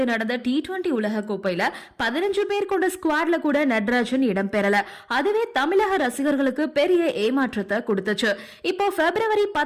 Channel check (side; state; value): both; identical; correlation 1.00